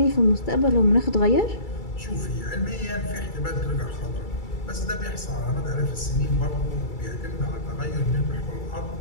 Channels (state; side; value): late; right; 2.3 ms